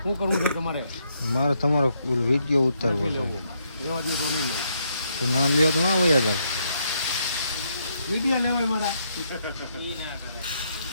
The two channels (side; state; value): both; inverted; correlation -0.75